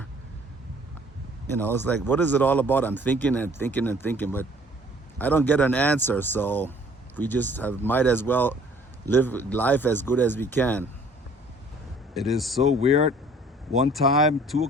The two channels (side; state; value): both; normal; correlation 0.55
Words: You know, it's like, what is it all about? I'm thinking and thinking and thinking, but I don't get an answer. So we just might as well live life as good as we can. It is so weird. One time, 2